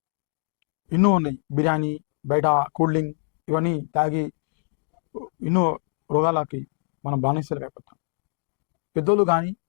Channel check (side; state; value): right; silent; digital silence